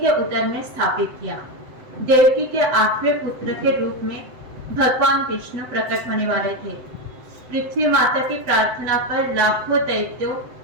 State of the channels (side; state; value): left; late; 7.9 ms